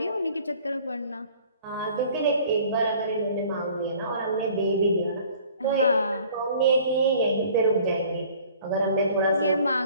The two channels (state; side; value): inverted; both; correlation -0.52